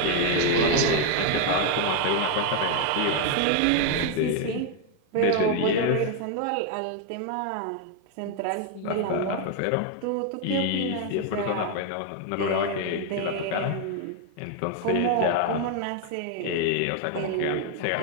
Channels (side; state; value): both; different; correlation 0.01